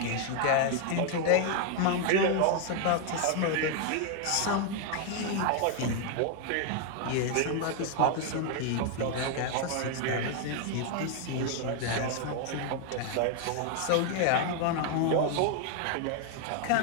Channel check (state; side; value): different; both; correlation 0.01